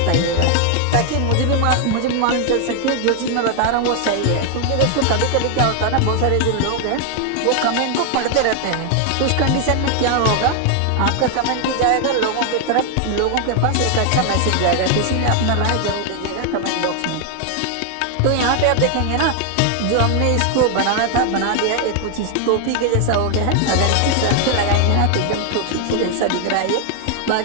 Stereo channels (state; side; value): different; both; correlation 0.00